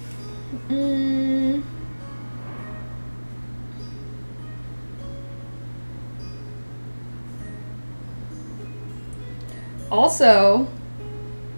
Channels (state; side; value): inverted; both; correlation -1.00